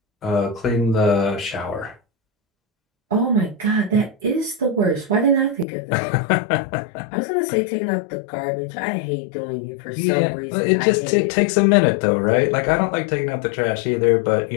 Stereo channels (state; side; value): drops out; right; at 5.7 s